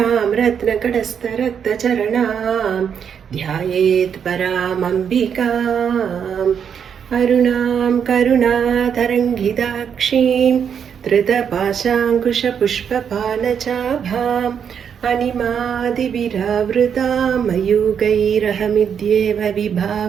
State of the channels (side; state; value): left; quieter; 7.6 dB